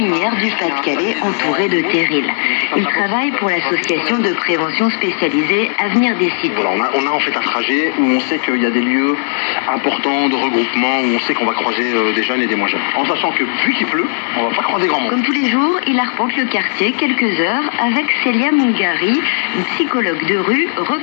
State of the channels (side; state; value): right; silent; digital silence